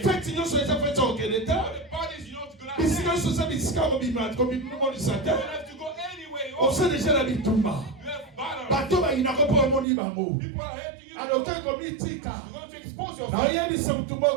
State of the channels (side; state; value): left; drops out; at 9.9 s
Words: Faites nous sur les affaires de All Canada. the parties you don't go Mais si there. nous sommes des scars comme il m'a du You Satan. don't have to go anywhere. On sait déjà la bitumba. You have battles. Bateau ba inako po moni bango. People are hating you. Alors que comme itika. You're going to expose Na yourself. yeli som I'm